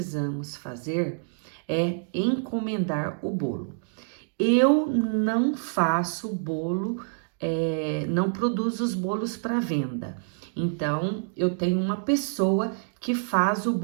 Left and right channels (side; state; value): left; silent; digital silence